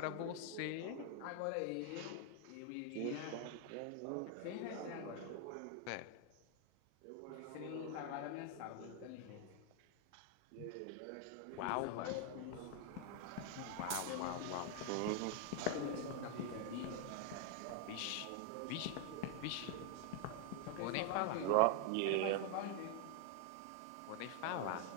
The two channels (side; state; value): both; different; correlation 0.00